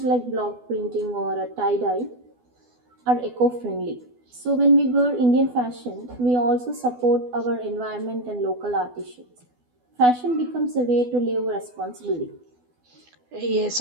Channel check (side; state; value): left; late; 12 ms